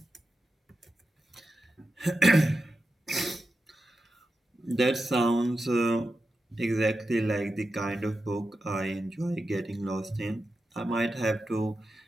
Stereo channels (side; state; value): both; normal; correlation 0.90